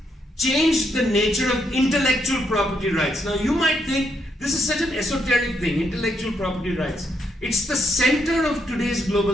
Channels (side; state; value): both; normal; correlation 0.77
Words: changed the nature of intellectual property rights. Now you might think this is such an esoteric thing, intellectual property rights. It's the center of today's